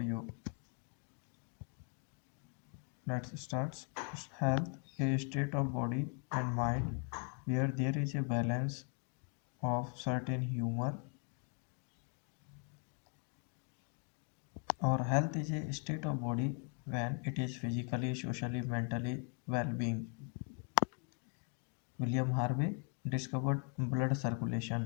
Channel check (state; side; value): quieter; right; 38.7 dB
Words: Let's start. Health, a state of body and mind where there is a balance of certain humor, or health is a state of body when it is physically, socially, mentally well-being. William Harvey discovered blood